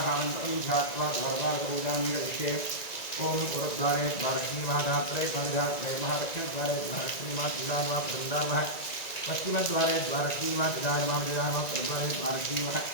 मन्त्रं ध्यात्वा द्वारपालकपूजां ओम पुरद्वारे द्वारश्रीमहाधात्रे द्वारिधात्रे महादक्षिणद्वारे द्वारश्रीमातुदानवा प्रदानवा पश्चिमद्वारे द्वारश्रीमातुदानवा प्रद्वारे द्वारश्रीमः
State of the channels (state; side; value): late; right; 1.9 ms